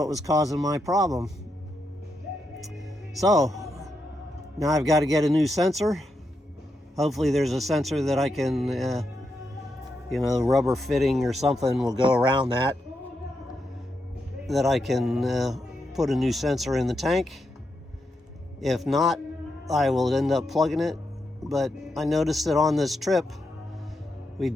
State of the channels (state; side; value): normal; both; correlation 0.84